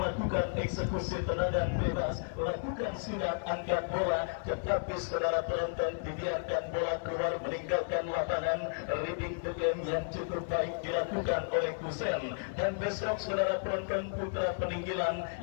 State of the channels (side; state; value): right; silent; 56 dB below the other